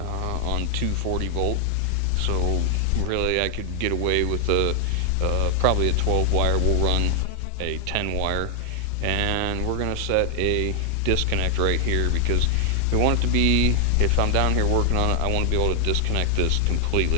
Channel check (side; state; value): both; different; correlation 0.00